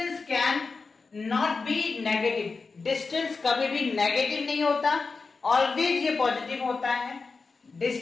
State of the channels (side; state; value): right; quieter; 4.4 dB